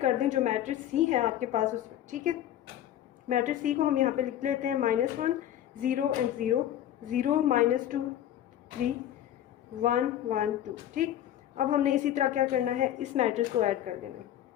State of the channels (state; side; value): quieter; right; 11.6 dB